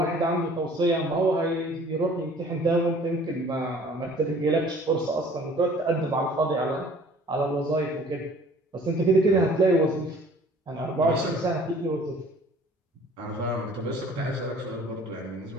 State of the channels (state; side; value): normal; both; correlation 0.52